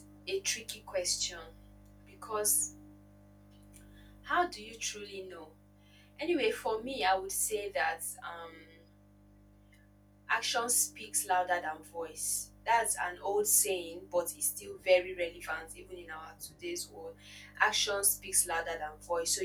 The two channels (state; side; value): identical; both; correlation 1.00